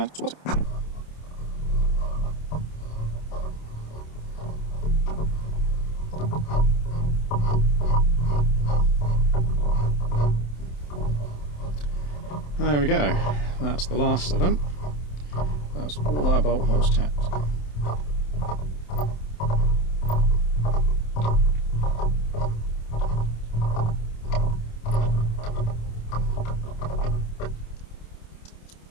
swap it. There we go, that's the last of them. That's all our bolt holes tapped.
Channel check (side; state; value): right; late; 27 ms